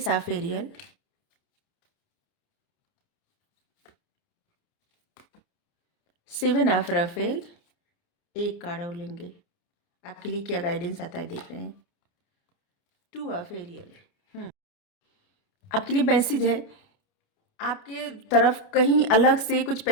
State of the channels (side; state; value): right; late; 29 ms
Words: of Ariel, 7 of Raphael, एक कार्ड और लेंगे, आपके लिए क्या गाइडेंस आता है देख रहे हैं। 2 ऑफ एरियल, आपके लिए मैसेज है, आपके तरफ कहीं अलग से कुछ